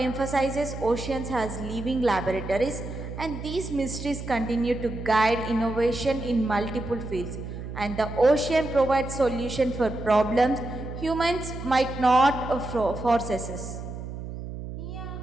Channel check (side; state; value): right; noise; hum, 9 dB below the sound